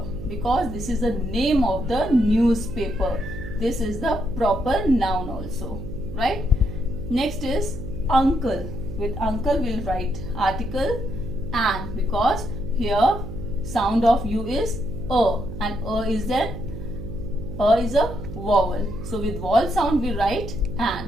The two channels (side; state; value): right; noise; hum, 9 dB below the sound